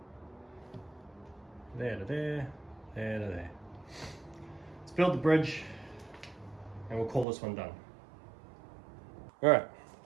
There to there, there to there. Let's build the bridge and we'll call this one done. Alright,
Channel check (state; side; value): drops out; left; at 7.2 s